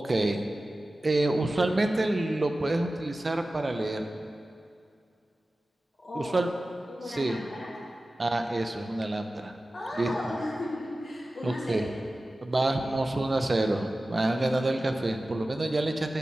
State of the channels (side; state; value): both; normal; correlation 0.95